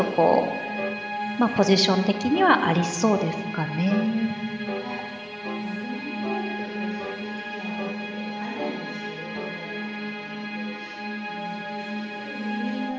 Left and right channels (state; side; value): identical; both; correlation 1.00